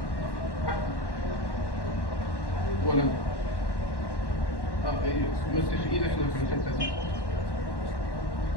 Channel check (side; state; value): right; late; 1.1 ms